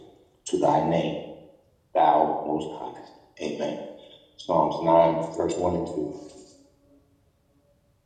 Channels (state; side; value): identical; both; correlation 1.00